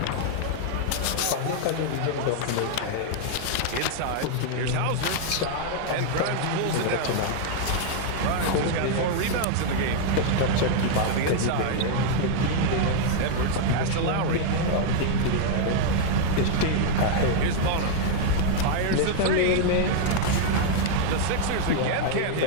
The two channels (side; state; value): both; different; correlation 0.00